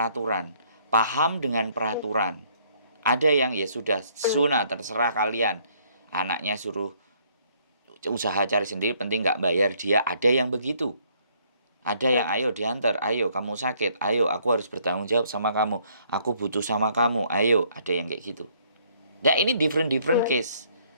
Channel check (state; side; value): inverted; both; correlation -0.66